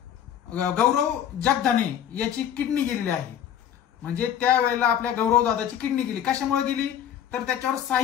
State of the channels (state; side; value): quieter; right; 9.7 dB